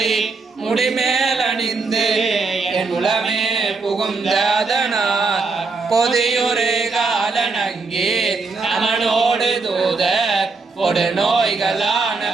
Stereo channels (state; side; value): quieter; left; 4.1 dB